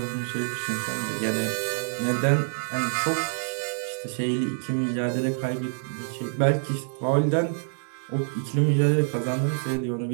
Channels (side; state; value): left; silent; 61 dB below the other